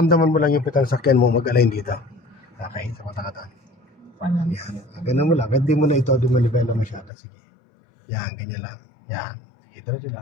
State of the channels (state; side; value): drops out; right; at 7.1 s